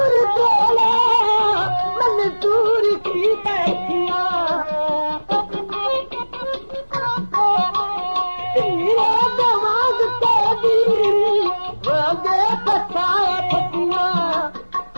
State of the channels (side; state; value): both; inverted; correlation -1.00